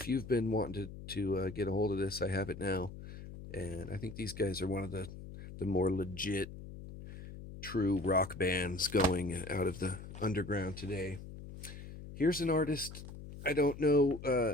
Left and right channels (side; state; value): left; noise; hum, 12 dB below the sound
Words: you've been wanting to get a hold of this, I have it now. And I think these guys are one of the more legit, true rock bands going out of the underground today. Here's an artist. I don't know